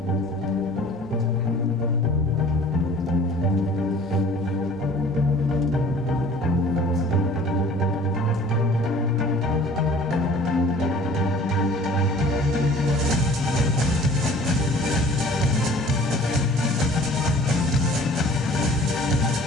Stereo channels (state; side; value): normal; both; correlation 0.49